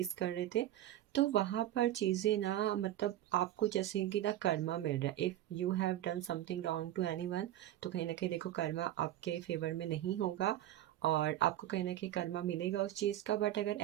कर रहे थे। तो वहाँ पर चीज़ें ना, मतलब आपको जैसे कि ना कर्मा मिल रहा है। If you have done something wrong to anyone, तो कहीं ना कहीं देखो कर्मा आपके फेवर में नहीं होगा और आपको कहीं ना कहीं कर्मा मिलेगा उस चीज़ का। बट अगर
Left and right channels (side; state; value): left; quieter; 13.2 dB